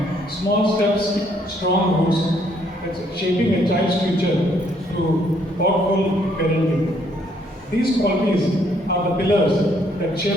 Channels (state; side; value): normal; both; correlation 0.68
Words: small steps, strong roots, that's shaping a child's future through thoughtful parenting. These qualities are the pillars that